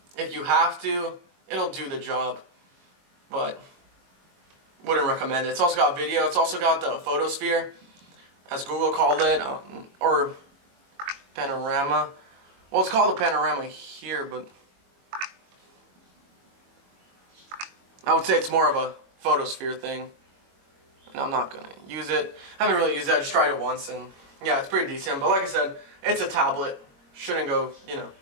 if you have to, it'll do the job. But wouldn't recommend it. It's also got video. It's also got the photosphere, as Google called it, or panorama. Well, it's called a panorama here, but I would say it's more of a photosphere thing. And I'm not going to use it. I haven't really used it. I just tried it once, and yeah, it's pretty decent. But like I said, it's a tablet. Shouldn't go, you know,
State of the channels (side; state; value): left; late; 21 ms